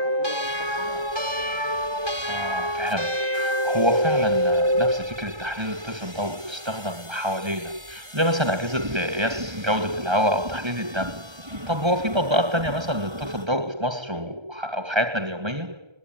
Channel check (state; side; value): late; left; 1.3 ms